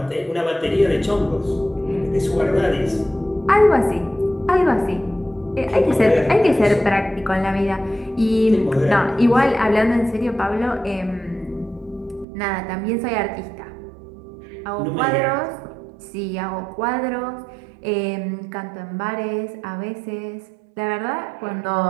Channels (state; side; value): drops out; left; at 12.2 s